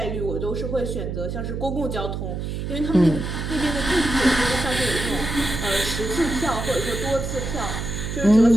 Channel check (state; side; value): noise; right; hum, 4 dB below the sound